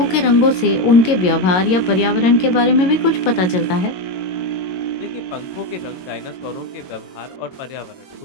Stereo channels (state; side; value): late; right; 22 ms